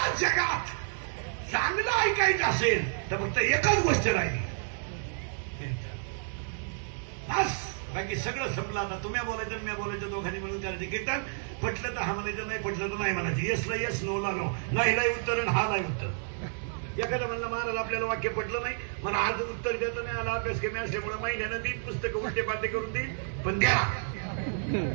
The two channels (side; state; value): left; silent; digital silence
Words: जगात चांगलं ऐकायचं असेल तर फक्त एकच गोष्ट राहिली, बस. बाकी सगळं संपलं. आता तुम्ही बोलायचं मी बोलायचं, दोघांनी मिळून करायचं कीर्तन. पटलं तर हा म्हणायचं, नाही पटलं तर नाही म्हणायचं. येसला येस, नोला नो. नाहीला उत्तर आणि हा नाही उत्तर. एखादा म्हणलं महाराज आपल्याला वाक्य पटलं नाही, मला आज उत्तर देता नाही आला, अभ्यास कमी असल्यामुळे महिन्यानं 3 पुस्तकं उलटे पालटे करून देईल, पण द्या.